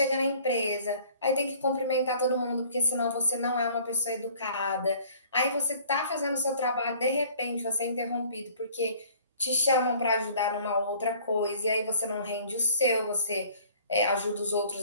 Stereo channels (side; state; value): both; inverted; correlation -0.52